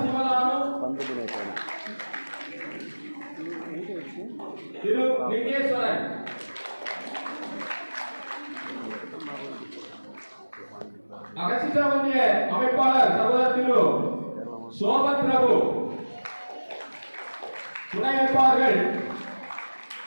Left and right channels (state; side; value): inverted; both; correlation -1.00